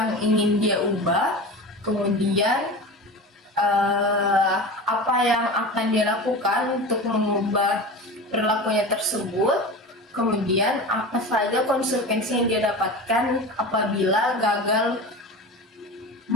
ingin dia ubah, kemudian apa yang akan dia lakukan untuk mengubah perilakunya tersebut, kemudian apa saja konsekuensi yang dia dapatkan apabila gagal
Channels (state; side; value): normal; both; correlation 0.30